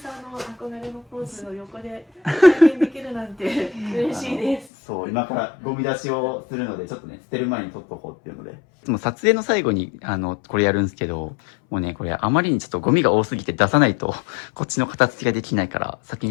んの憧れのポーズの横で体験できるなんて嬉しいです。そう、今からゴミ出しをするので、ちょっとね、捨てる前に撮っとこうっていうので。もう撮影の最後に、これやるんですけど、もうね、これあまりにちょっとゴミが多すぎて出さないと、こっちの片付けができないから、先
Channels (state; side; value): drops out; right; at 4.7 s